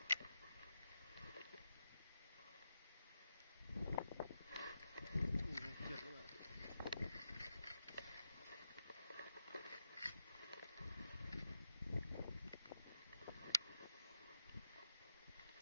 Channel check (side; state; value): both; inverted; correlation -0.80